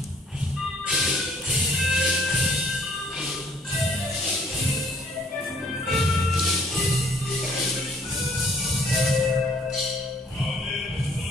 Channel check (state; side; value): normal; both; correlation 0.60